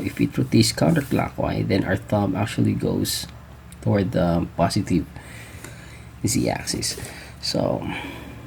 if it rotates counterclockwise, then our thumb actually goes toward the positive z-axis. So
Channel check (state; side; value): identical; both; correlation 1.00